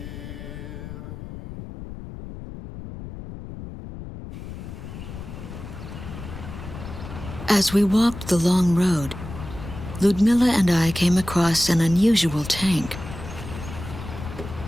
As we walked the long road, Ludmilla and I came across an unusual tank.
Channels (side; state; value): left; noise; rumble, 11 dB below the sound